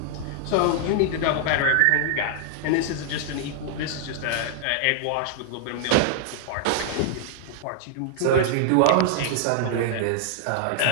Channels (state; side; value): different; both; correlation -0.01